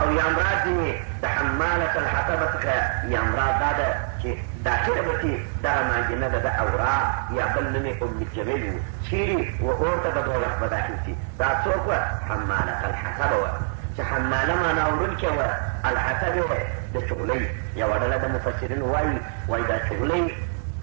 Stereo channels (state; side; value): silent; left; digital silence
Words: یا مراد دې د حمالة الحطب څخه یا مراد دا ده چې داخله به چې دغه مانجنه ده د اورا یا بل نوم یې ام جمیل و چیرې و اور ته د دوزخ به داخل شي. دا څوک وه؟ حمالة الحطب وه چې حماله معنا وړونکې وه. الحطب د چغلۍ یوه ډله د مفسرینو وایي دا چغلۍ